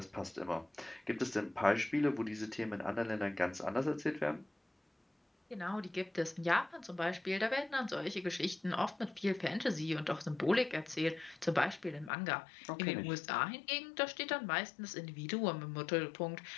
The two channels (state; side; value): drops out; right; at 12.1 s